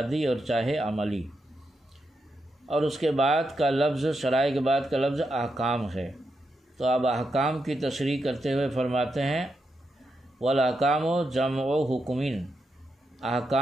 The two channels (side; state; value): both; normal; correlation 0.84